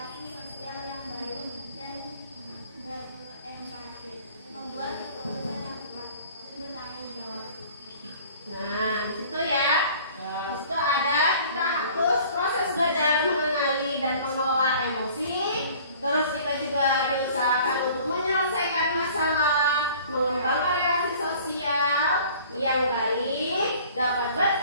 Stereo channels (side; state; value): both; inverted; correlation -0.49